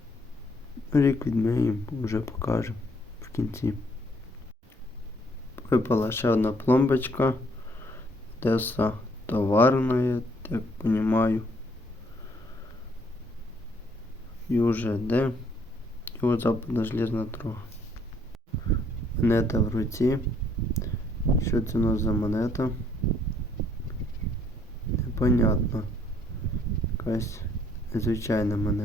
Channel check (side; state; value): both; normal; correlation 0.66